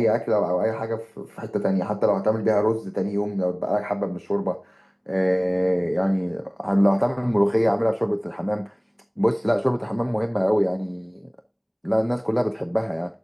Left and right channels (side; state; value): both; identical; correlation 1.00